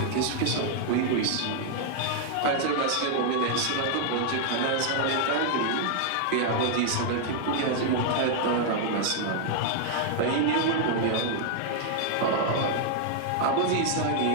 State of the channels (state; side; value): different; both; correlation -0.01